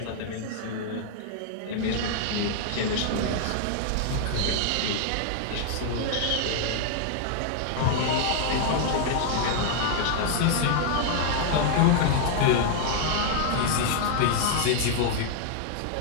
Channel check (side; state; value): both; different; correlation 0.00